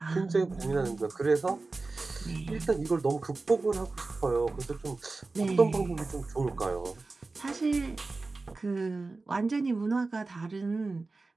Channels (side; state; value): left; quieter; 3.6 dB